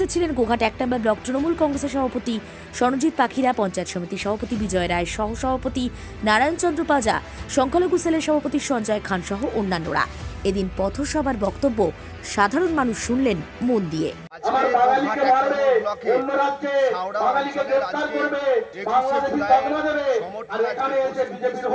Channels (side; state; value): both; identical; correlation 1.00